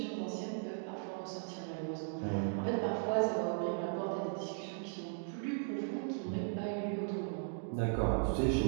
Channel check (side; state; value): left; silent; digital silence